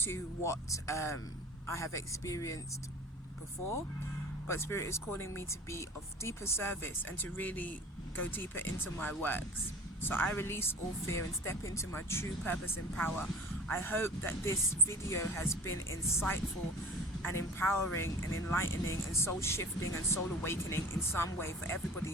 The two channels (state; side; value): normal; both; correlation 0.41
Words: what I have experienced before, but Spirit is calling me to be of deeper service and to really go deeper into my works. So I release all fear and step into my true purpose and power. I hope that this video has been insightful and empowering and enlightening and soul shifting and soul awakening in some way for